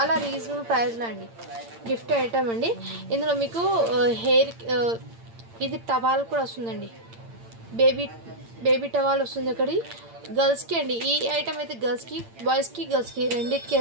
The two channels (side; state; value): left; late; 8.8 ms